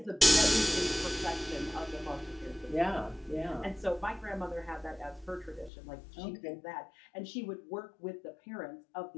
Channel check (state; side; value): drops out; right; at 5.7 s